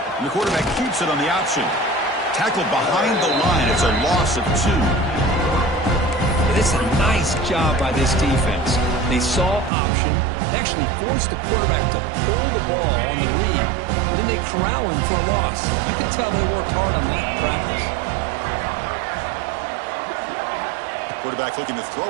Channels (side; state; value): left; drops out; at 9.7 s